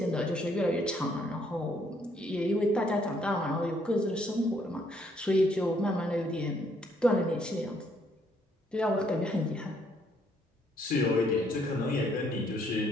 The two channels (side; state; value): both; normal; correlation 0.69